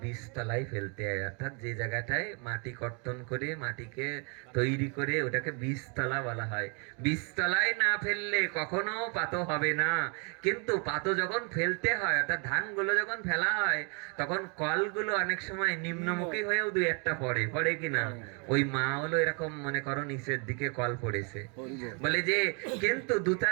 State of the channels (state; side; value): quieter; left; 35.8 dB